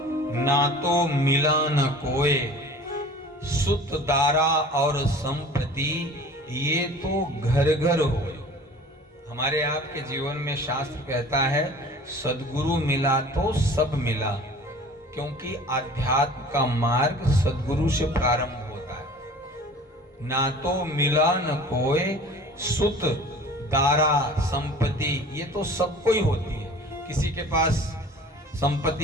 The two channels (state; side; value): normal; both; correlation 0.44